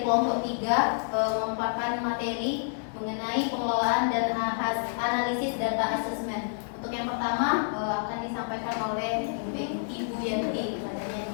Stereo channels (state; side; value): silent; right; digital silence